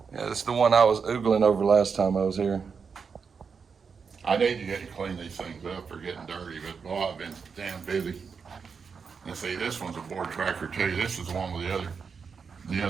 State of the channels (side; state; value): left; quieter; 5.8 dB